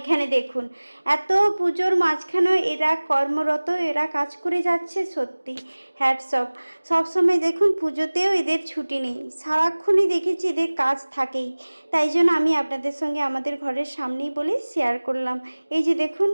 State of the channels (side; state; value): both; inverted; correlation -1.00